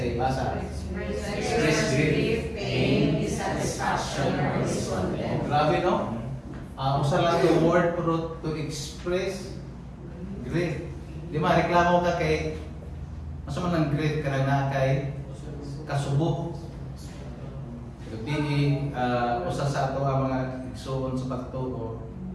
basa. Express grief, pain, dissatisfaction, or discontent. Grabe, no? Usa lang yung word to express grief. Di ba, reklamo ka kay mas man ang grief ka na kay kasubo. Gabi, usa sa ato ang mga igsoon sa pagtuo,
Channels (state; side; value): identical; both; correlation 1.00